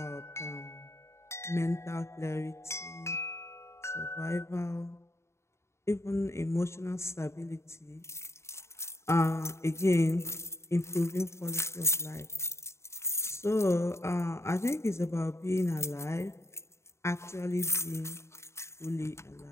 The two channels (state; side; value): late; right; 0.13 ms